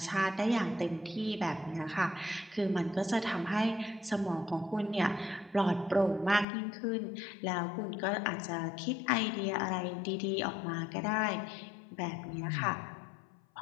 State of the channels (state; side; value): drops out; right; at 6.5 s